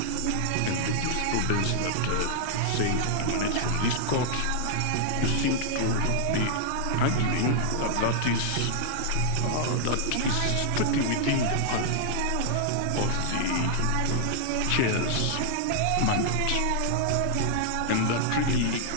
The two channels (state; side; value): different; both; correlation -0.01